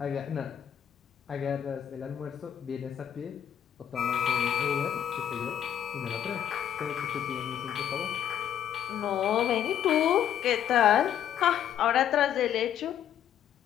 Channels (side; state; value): right; quieter; 9.9 dB